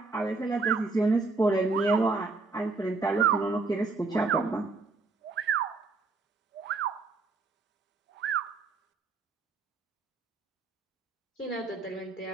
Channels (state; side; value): quieter; left; 3.9 dB